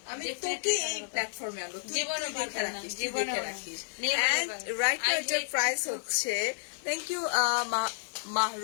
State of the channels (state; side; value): silent; right; digital silence